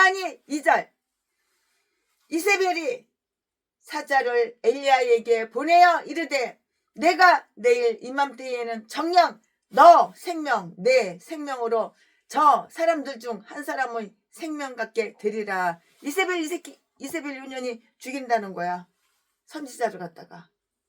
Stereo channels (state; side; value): identical; both; correlation 1.00